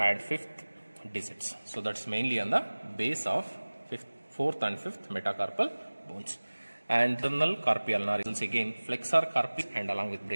5th digits. So that's mainly on the base of 4th and 5th metacarpal bones. And internal carpi ulnaris, again flexor carpi and along with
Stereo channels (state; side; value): inverted; both; correlation -1.00